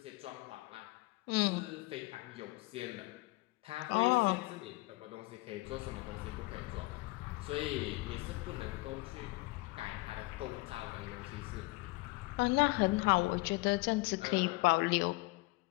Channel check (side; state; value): right; quieter; 23.2 dB